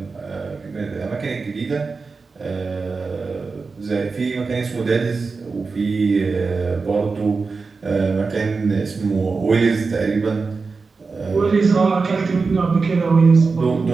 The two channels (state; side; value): quieter; left; 4.4 dB